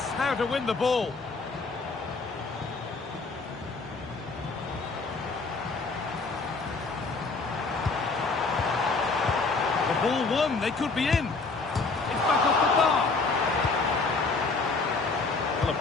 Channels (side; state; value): right; quieter; 4.0 dB